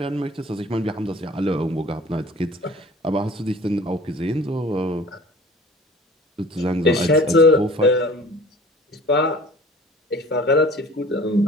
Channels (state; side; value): normal; both; correlation 0.46